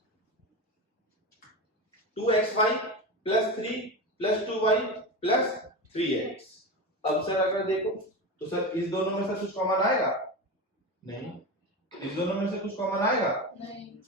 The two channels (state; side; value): normal; both; correlation 0.23